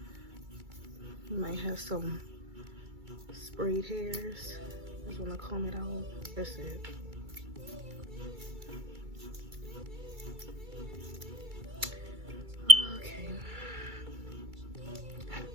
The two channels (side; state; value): left; late; 2.3 ms